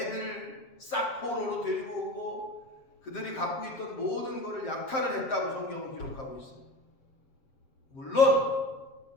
싹 포로로 데리고 오고 그들이 갖고 있던 모든 것을 약탈을 했다고 성경은 기록하고 있어요. 물론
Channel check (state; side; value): late; right; 7.6 ms